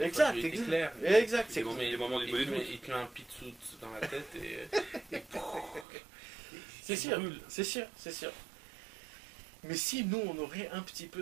C'est les moments du il te met un pitsout dans la tête et c'est sûr. Mais si nous, on aurait un petit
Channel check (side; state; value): left; drops out; at 5.9 s